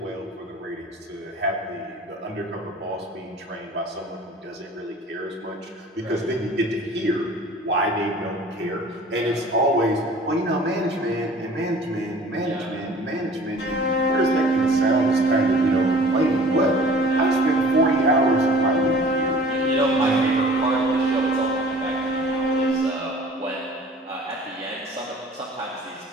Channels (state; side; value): normal; both; correlation 0.47